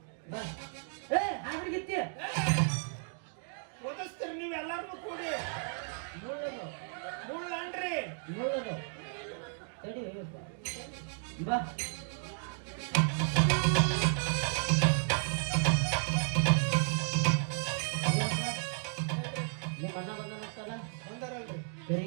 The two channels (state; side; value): silent; left; 55 dB below the other